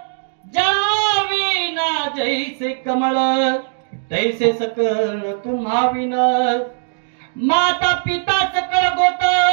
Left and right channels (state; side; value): silent; left; digital silence